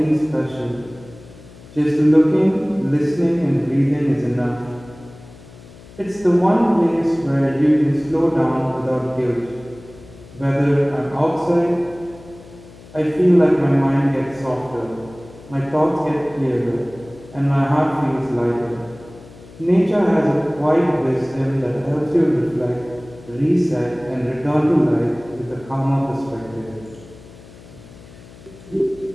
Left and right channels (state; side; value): noise; left; hum, 20 dB below the sound